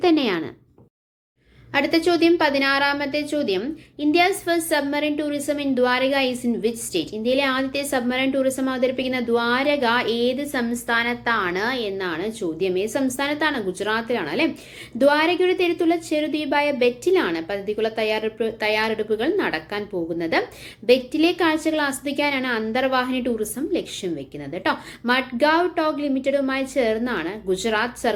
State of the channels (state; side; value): identical; both; correlation 1.00